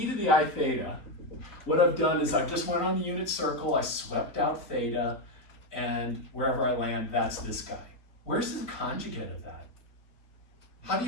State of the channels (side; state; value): right; late; 3.9 ms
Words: to the I theta, what I've done is I've just went on the unit circle, I swept out theta, and wherever I land, that's this guy. Where's the conjugate of that? How do